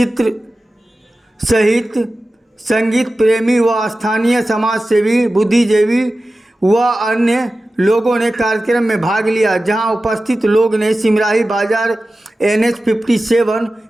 सहित संगीत प्रेमी व स्थानीय समाज सेवी, बुद्धिजीवी व अन्य लोगों ने कार्यक्रम में भाग लिया। जहां उपस्थित लोग ने सिमराही बाजार NH 57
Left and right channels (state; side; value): normal; both; correlation 0.95